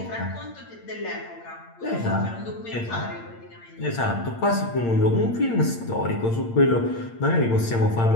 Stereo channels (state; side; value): late; right; 8.7 ms